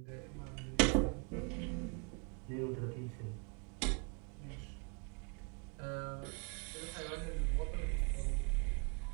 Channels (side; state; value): left; quieter; 35.0 dB